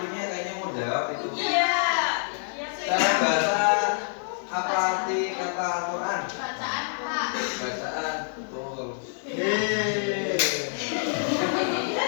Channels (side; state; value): right; silent; digital silence